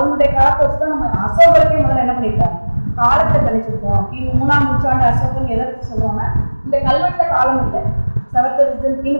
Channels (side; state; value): both; inverted; correlation -1.00